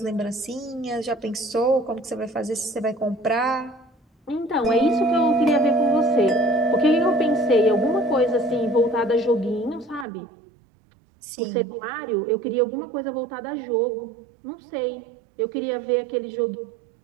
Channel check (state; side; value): drops out; left; at 10.1 s